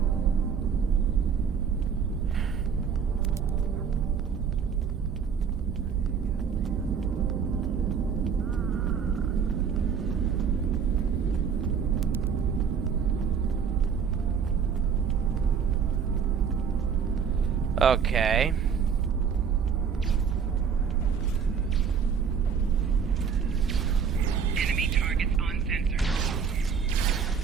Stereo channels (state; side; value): quieter; left; 6.7 dB